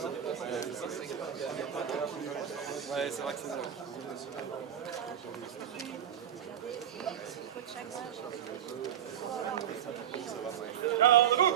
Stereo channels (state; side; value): quieter; left; 9.8 dB